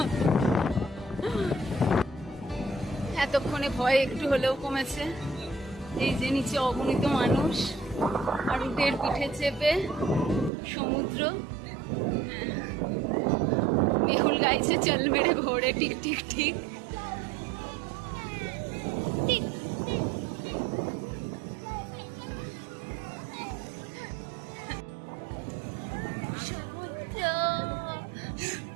এতক্ষণে ভয় একটু হলেও কমেছে। এই যে নিচে অগণিত মানুষ আর উটের পিঠে চেপে সমুদ্র। হ্যাঁ, মেহুল গাইছে চল মেরে ঘোড়ে টিক টিক ঠিক। সমুদ্র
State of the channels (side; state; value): left; drops out; at 10.5 s